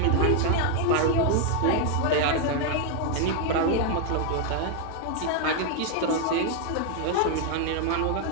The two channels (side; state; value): both; different; correlation 0.00